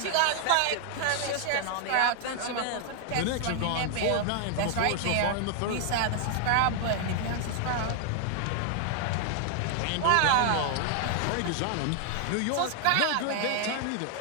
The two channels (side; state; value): both; different; correlation 0.00